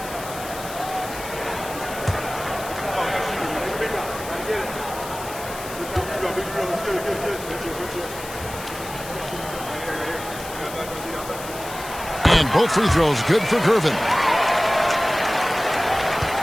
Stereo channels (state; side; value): noise; left; hiss, 13 dB below the sound